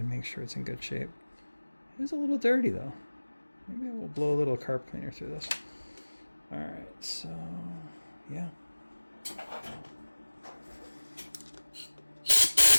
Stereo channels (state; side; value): inverted; both; correlation -1.00